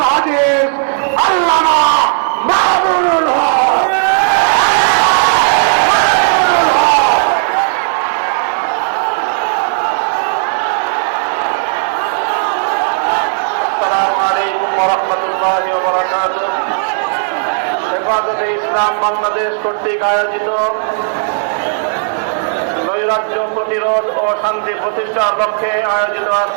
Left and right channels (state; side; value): silent; left; digital silence